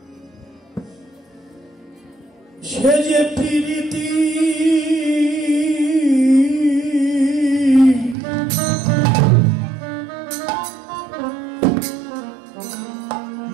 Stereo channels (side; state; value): left; drops out; at 8.2 s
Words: সে যে প্রীতি